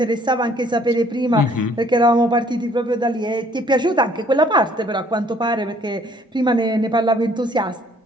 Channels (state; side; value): normal; both; correlation 0.60